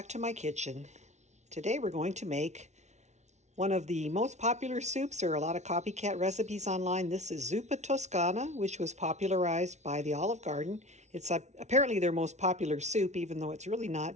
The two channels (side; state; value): left; late; 0.33 ms